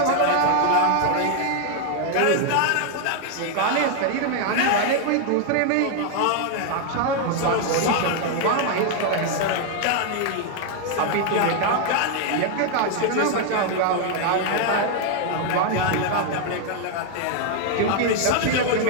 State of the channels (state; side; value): different; both; correlation 0.00